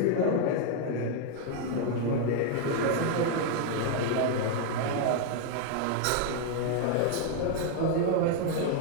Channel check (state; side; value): different; both; correlation 0.00